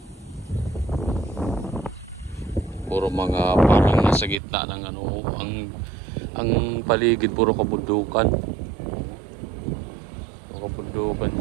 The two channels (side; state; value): left; drops out; at 4.4 s